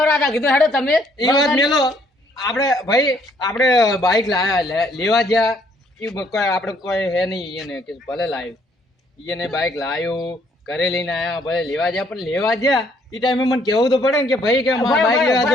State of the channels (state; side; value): normal; both; correlation 0.66